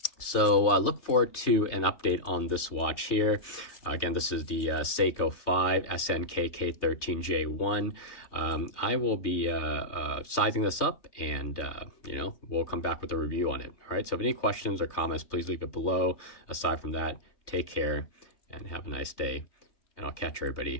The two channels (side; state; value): right; late; 3.3 ms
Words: So look forward to an update on this watch here. Again, this is the Seiko SNKK13J1. I will be sizing this up, and you know, we'll come back with a review on it. All right, so if any questions or comments, please leave it below. Aside from that, take care and have a nice day, and I'll catch